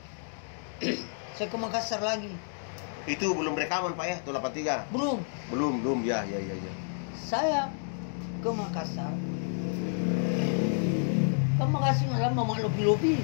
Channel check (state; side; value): silent; right; digital silence